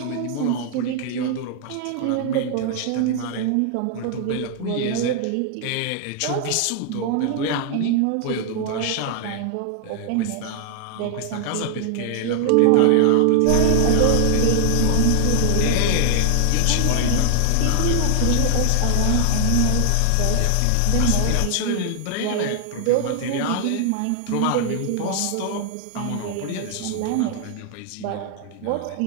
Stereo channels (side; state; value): both; different; correlation 0.00